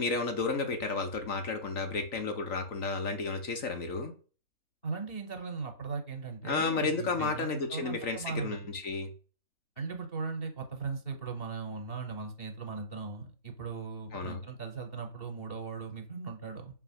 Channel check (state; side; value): late; right; 3.9 ms